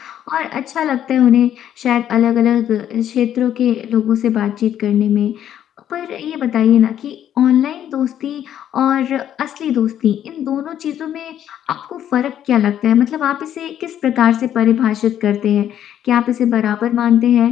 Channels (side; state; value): right; quieter; 10.5 dB